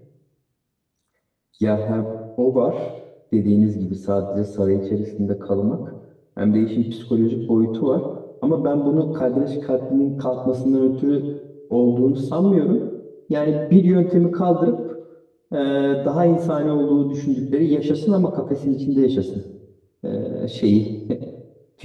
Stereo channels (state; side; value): identical; both; correlation 1.00